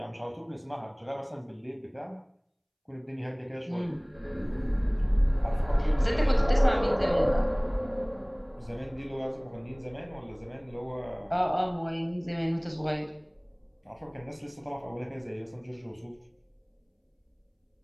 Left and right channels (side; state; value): both; identical; correlation 1.00